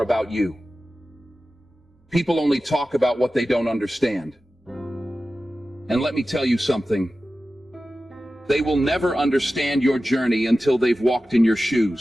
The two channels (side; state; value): both; normal; correlation 0.94